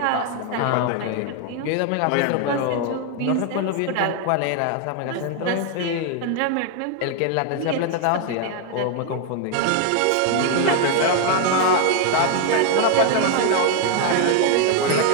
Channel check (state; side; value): different; both; correlation 0.00